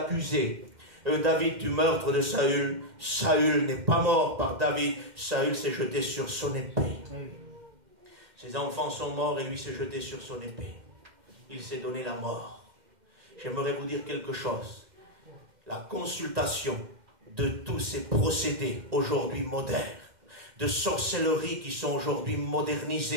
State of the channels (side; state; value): left; late; 2.1 ms